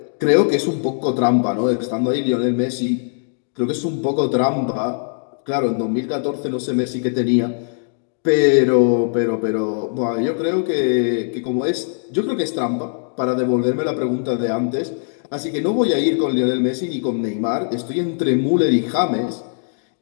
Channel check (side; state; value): right; silent; digital silence